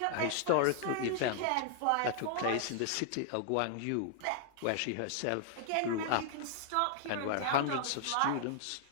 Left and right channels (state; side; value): different; both; correlation -0.01